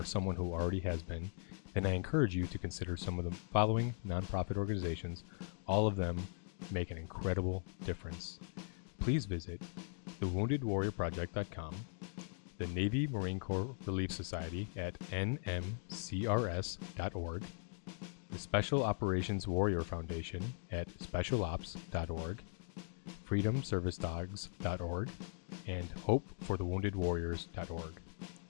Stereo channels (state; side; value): silent; right; 51 dB below the other